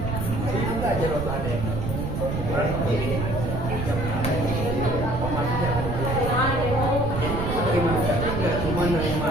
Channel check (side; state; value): right; noise; rumble, 3 dB below the sound